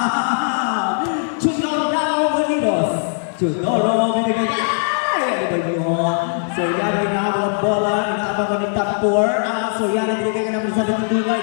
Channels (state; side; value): silent; right; digital silence